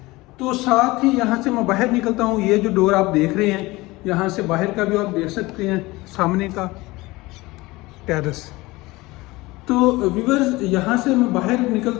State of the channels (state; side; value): quieter; right; 21.0 dB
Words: तो साथ ही यहाँ से मैं बाहर निकलता हूँ, ये जो डोर आप देख रहे हैं, यहाँ से बाहर का भी आप देख सकते हैं, सामने का टेरेस। तो व्यूअर्स यहाँ से मैं बाहर